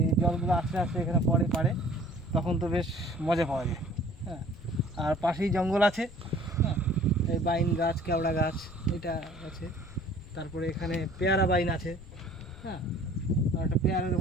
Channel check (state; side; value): noise; left; rumble, 19 dB below the sound